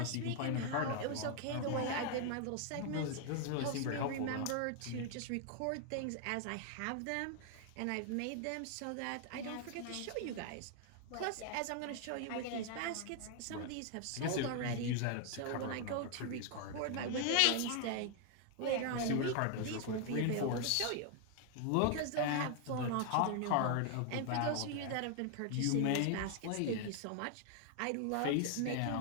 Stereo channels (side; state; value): both; different; correlation 0.00